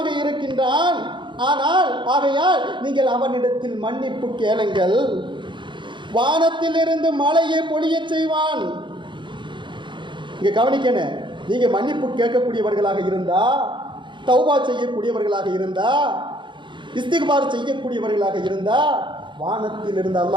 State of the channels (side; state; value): left; late; 0.23 ms